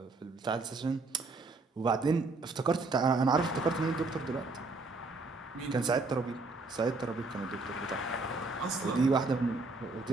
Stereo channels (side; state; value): left; quieter; 3.6 dB